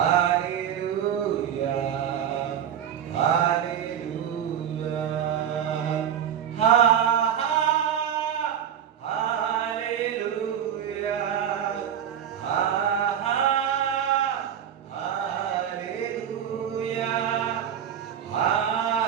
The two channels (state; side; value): quieter; left; 9.2 dB